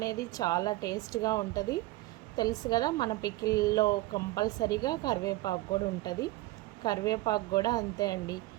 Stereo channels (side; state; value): left; quieter; 18.6 dB